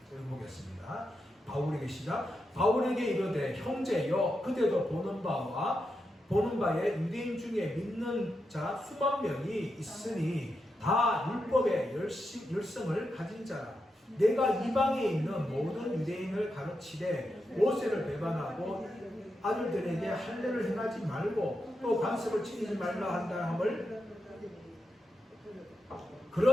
읽어보겠습니다. 바울에게 시작. 바울에게 이르되 형제여, 그대도 보는 바에 유대인 중에 믿는 자 수만 명이 있으니 다 율법의 열성을 가진 자라. 내가 이방에 있는 모든 유대인을 가르치되 모세를 배반하고 아들들에게 할례를 행하지 말고 또 관습을 지키지 말라 한다 함을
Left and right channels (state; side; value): normal; both; correlation 0.86